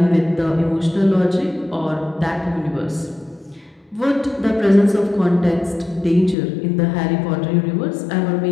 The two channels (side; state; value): right; drops out; at 6.4 s